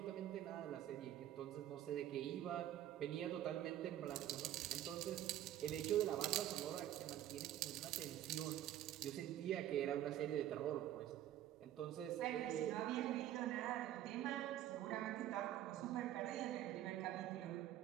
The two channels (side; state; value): left; quieter; 12.4 dB